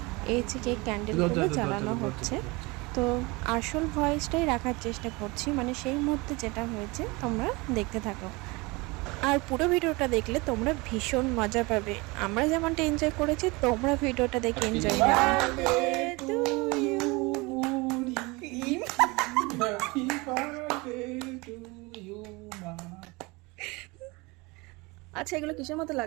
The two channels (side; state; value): left; quieter; 25.1 dB